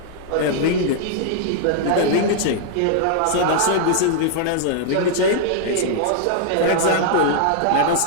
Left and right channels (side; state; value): both; different; correlation -0.01